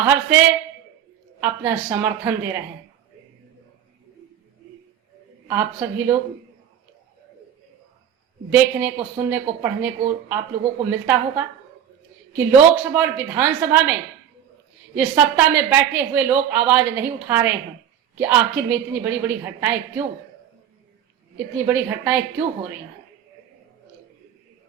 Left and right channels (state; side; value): quieter; left; 9.5 dB